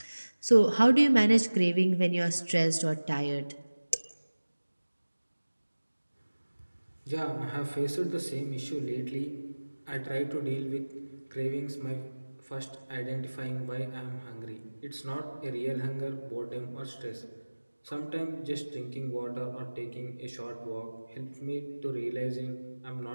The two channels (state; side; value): inverted; both; correlation -1.00